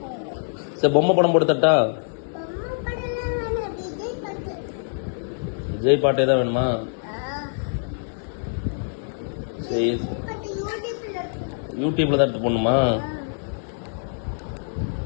சரி பொம்மை படம் போட்டு தட்டா? விஜய் பாட்டே தான் வேணுமா? சரி யூடியூப்ல தான் எடுத்து போடணுமா?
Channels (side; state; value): right; silent; digital silence